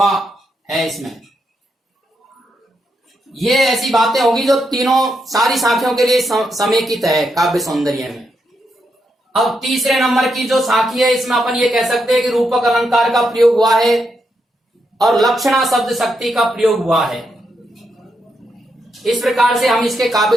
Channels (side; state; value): both; normal; correlation 0.81